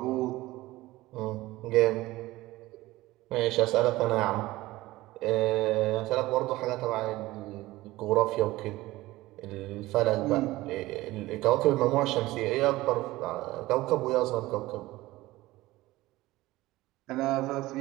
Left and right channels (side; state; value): left; quieter; 18.2 dB